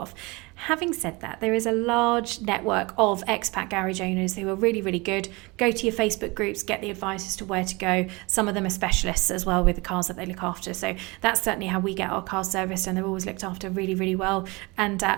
Having said that, there is a large network of expat garage owners who are really, really good. Go to your Facebook groups, get the advice as to where to go. Some of them are specialists as well with the cars that they look after. So that's certainly how we get our cars serviced, and they're always looked after really, really well, and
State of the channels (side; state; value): left; quieter; 25.1 dB